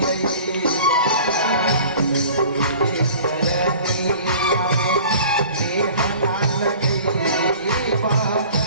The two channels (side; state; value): both; inverted; correlation -0.45